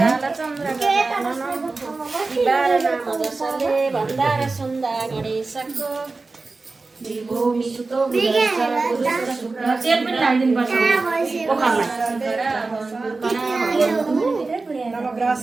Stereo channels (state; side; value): quieter; left; 3.7 dB